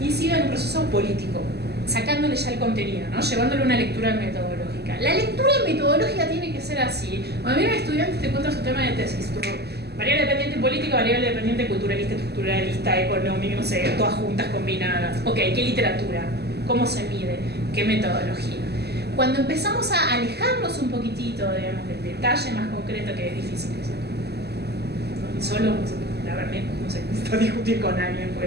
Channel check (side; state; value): left; late; 0.47 ms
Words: incida en un proceso político, sacándole ya el contenido, ¿no? Llevándole una lectura metodológica. La lectura metodológica tiene que ser así. Cuando viene un estudiante te cuenta su tema de tesis, variable dependiente política, variable dependiente culturalista, estructuralista, económica, no sé, todas juntas, combinadas. Ok, ¿qué literatura? ¿Cómo se mide? ¿Qué metodología? Cuando empezamos a alejarnos un poquitito, digamos, del detalle más concreto, que es difícil eso. Solo, la verdad, no sé, necesito discutir con alguien,